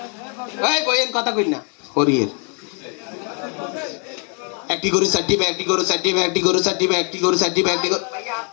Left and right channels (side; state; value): right; quieter; 37.8 dB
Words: এই কইেন কথা কই না হরিয়ের একটি গরু চারটি ব্যাগ একটি গরু চারটি ব্যাগ একটি গরু চারটি ব্যাগ একটি গরু চারটি ব্যাগ একটি